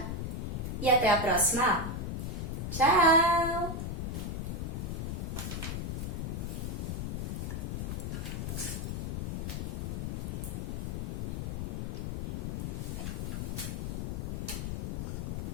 e até a próxima aula. Tchau!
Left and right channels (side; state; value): left; noise; rumble, 2 dB below the sound